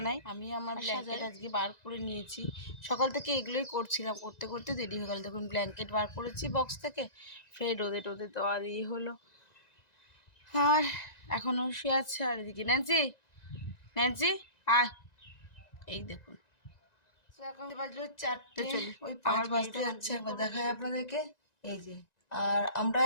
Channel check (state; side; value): late; right; 1.9 ms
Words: আমি আমার ব্ল্যাঙ্কেট আজকে বার করে নিয়েছি, সকাল থেকে এগুলোই করছিলাম, করতে করতে দেরি হয়ে গেল। দেখুন ব্ল্যাঙ্কেট বার করেছি বক্স থেকে, ফের রোদে টোদে দেওয়া দিয়ে হলো। আর এখনও শুয়ে আছে। আর এদিকে ন্যান্সি, ন্যান্সি আয়, এই দেখুন এখন বাজলো 4টে, ওই আমার বাজতে যাচ্ছে, একবার দেখায় আপনাদেরকে। এই যে, আর আমরা